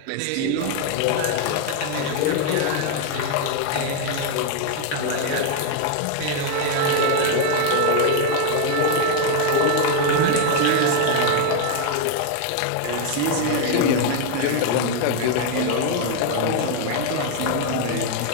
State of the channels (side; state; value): both; different; correlation 0.00